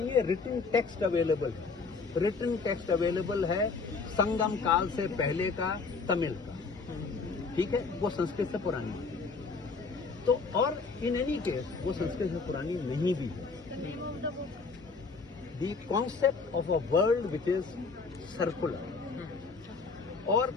है। रिटन टेक्स्ट अवेलेबल है, रिटन टेक्स्ट अवेलेबल है संगम काल से पहले का तमिल का। ठीक है, वो संस्कृत से पुरानी है। तो और इन एनी केस वो संस्कृत से पुरानी नहीं भी है। The concept of a world which is circular, और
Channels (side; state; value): right; quieter; 4.5 dB